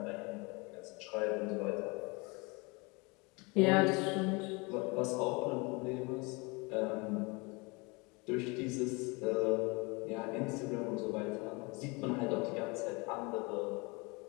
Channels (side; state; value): right; quieter; 27.8 dB